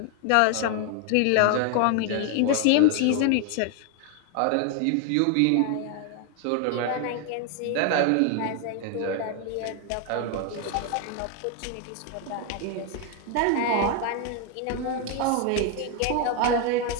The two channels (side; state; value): both; different; correlation 0.01